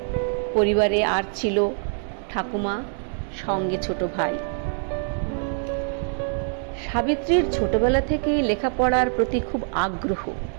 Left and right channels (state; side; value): silent; left; 62 dB below the other